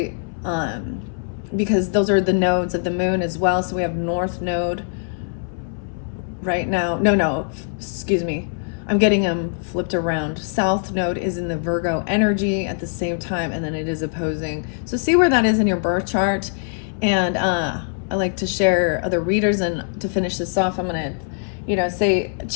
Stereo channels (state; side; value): silent; right; 64 dB below the other